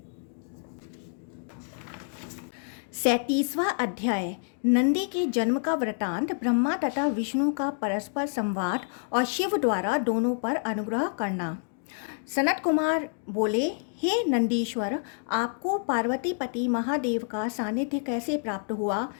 37वां अध्याय नंदी के जन्म का वृतांत, ब्रह्मा तथा विष्णु का परस्पर संवाद और शिव द्वारा दोनों पर अनुग्रह करना। सनत कुमार बोले, हे नंदीश्वर, आपको पार्वती पति महादेव का सानिध्य कैसे प्राप्त हुआ?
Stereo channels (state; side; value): silent; right; 59 dB below the other